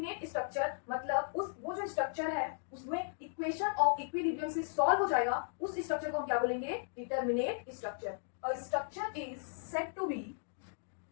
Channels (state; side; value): silent; right; digital silence